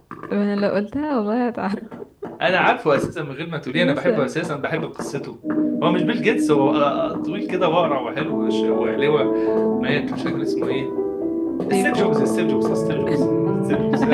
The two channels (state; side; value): identical; both; correlation 1.00